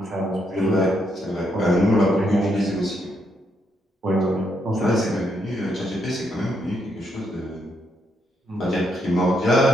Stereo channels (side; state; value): both; normal; correlation 0.77